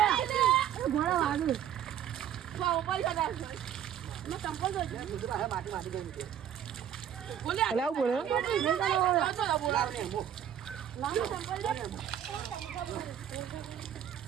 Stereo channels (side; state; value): left; quieter; 9.9 dB